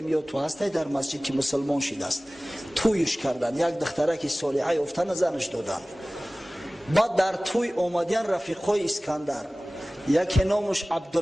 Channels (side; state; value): both; normal; correlation 0.98